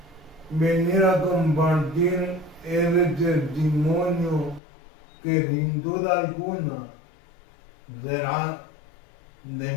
venir a compartir ese testimonio que sin duda alguna será de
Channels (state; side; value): drops out; right; at 4.6 s